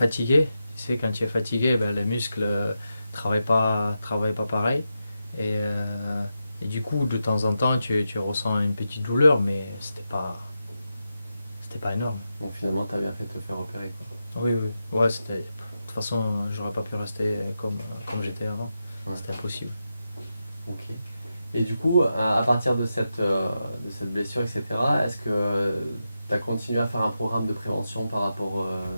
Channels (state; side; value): inverted; both; correlation -0.88